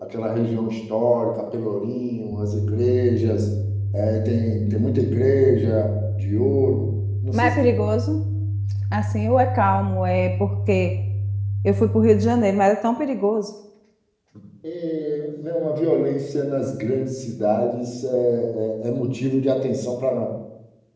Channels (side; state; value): both; identical; correlation 1.00